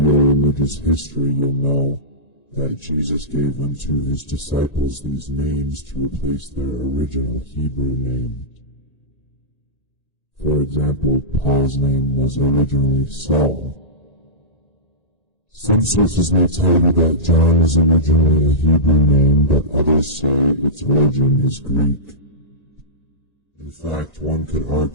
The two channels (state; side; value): late; right; 1.9 ms